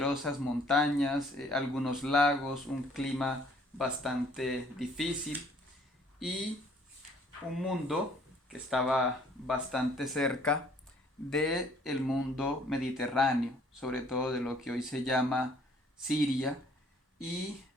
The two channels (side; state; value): both; normal; correlation 0.59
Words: montañas, algunos lagos, un clima bastante difícil y un mundo que estaba bastante cerca del mundo mediterráneo, sobre todo de lo que hoy se llama Siria, y